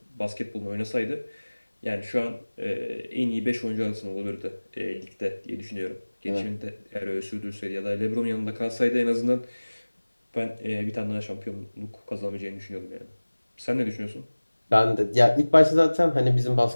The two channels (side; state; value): both; inverted; correlation -1.00